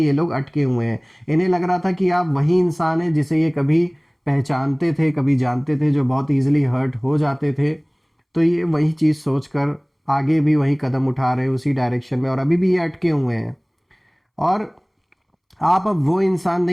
लोग अटके हुए हैं। इन्हें लग रहा था कि आप वही इंसान हैं जिसे ये कभी पहचानते थे, कभी जानते थे, जो बहुत इजीली हर्ट हो जाते थे। तो ये वही चीज़ सोचकर आगे भी वही कदम उठा रहे हैं उसी डायरेक्शन में, और अभी भी ये अटके हुए हैं। और आप अब वो इंसान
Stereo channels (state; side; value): identical; both; correlation 1.00